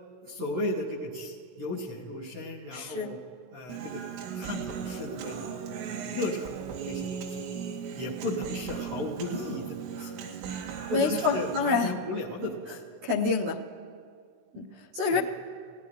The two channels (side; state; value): left; late; 16 ms